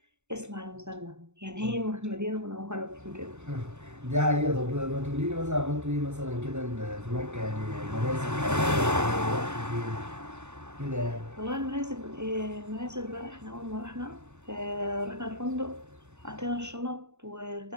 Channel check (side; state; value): left; late; 0.83 ms